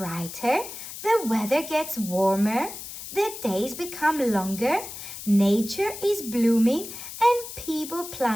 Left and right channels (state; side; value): noise; left; hiss, 11 dB below the sound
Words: the weather gets warmer, the days become longer, nature is blooming, and people